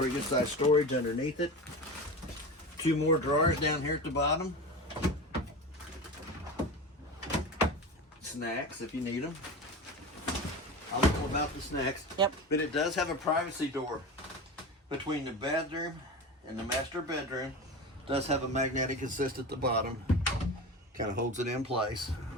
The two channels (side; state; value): both; normal; correlation 0.28